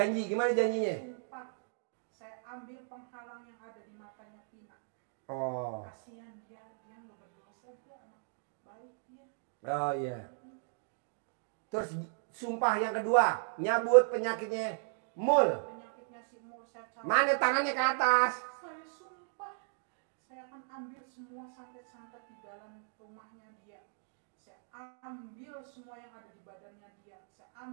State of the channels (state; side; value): silent; left; digital silence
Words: gimana janjinya? Sumpah. Saya ambil penghalang yang ada di matanya Pina. Oh. Kasihan dia nggak berdosa, dia anak baik dia. Oh iya. Terus sumpah yang kedua, nyabut penyakitnya Mul. Penyakitnya si Mul saya cabut. Mana tangannya ke atas? Saya sumpah, saya akan ambil semua santet-santet di dalam rumahnya dia. Saya ambil semua yang ada di badannya dia. Saya